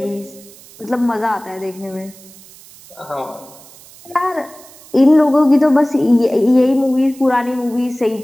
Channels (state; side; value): noise; right; hiss, 22 dB below the sound